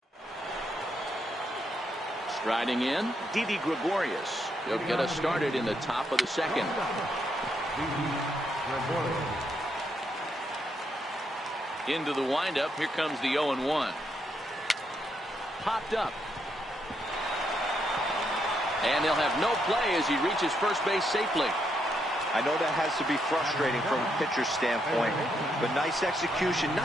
Striding in, Didi Gregorius. He'll get us started in the top of the second. Into the windup, here comes the 0-1. Popped up. And they'll have no play as he reaches first base safely. I know that has to be frustrating from a pitcher's standpoint, but nice execution,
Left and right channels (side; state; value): both; normal; correlation 0.78